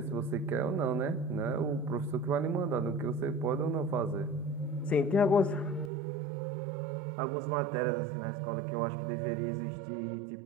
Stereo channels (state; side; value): drops out; left; at 5.9 s